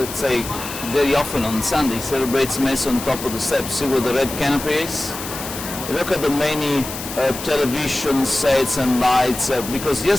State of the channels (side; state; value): left; noise; hiss, 9 dB below the sound